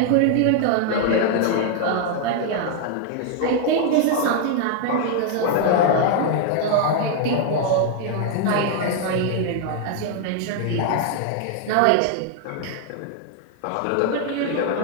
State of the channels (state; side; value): different; both; correlation 0.00